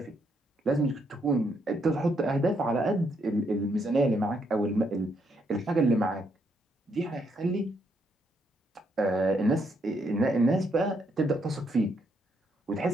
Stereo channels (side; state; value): both; normal; correlation 0.75